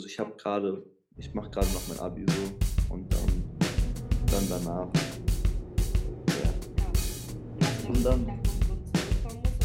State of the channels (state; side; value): identical; both; correlation 1.00